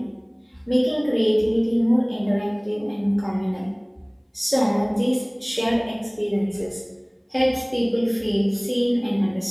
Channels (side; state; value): both; identical; correlation 1.00